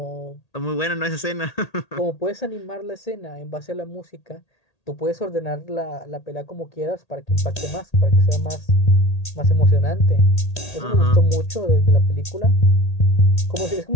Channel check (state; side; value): late; right; 1.8 ms